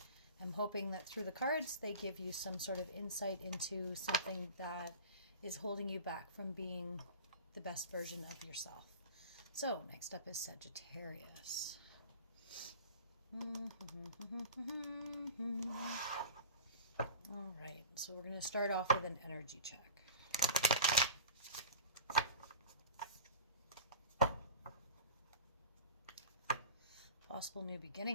am hoping that through the cards, they give you some sort of insight into something that is holding you back from being the best version of yourself. So, next up is Sagittarius. All right, so we're going to start off with an energy check. Possible new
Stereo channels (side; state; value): both; inverted; correlation -0.36